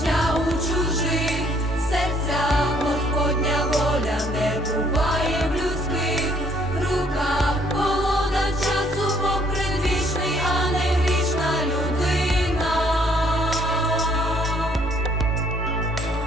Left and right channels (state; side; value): normal; both; correlation 0.64